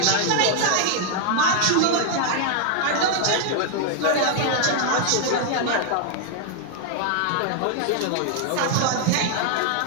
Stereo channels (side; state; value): both; different; correlation 0.00